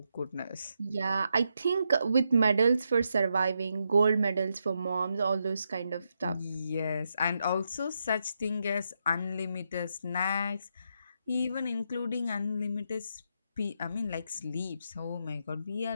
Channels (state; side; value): inverted; both; correlation -0.82